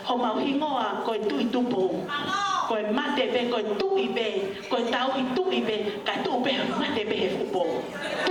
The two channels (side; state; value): both; identical; correlation 1.00